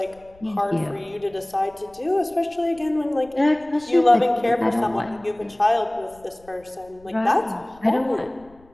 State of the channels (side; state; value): left; noise; rumble, 28 dB below the sound